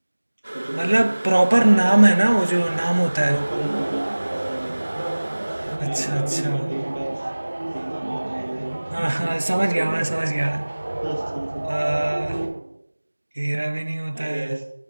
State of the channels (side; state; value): both; inverted; correlation -1.00